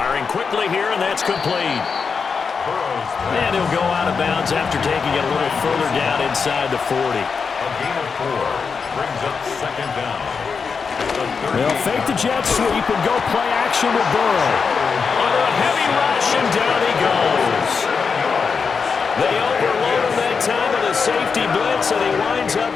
quickly here, and that's complete. And he'll go out of bounds after taking it a little further down inside the 40. A gain of 4 brings up 2nd down. They'll fake the jet sweep and go play action with Burrow. Under a heavy rush, and down he goes. They overload him that time with a safety blitz, and he winds up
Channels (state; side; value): quieter; right; 5.5 dB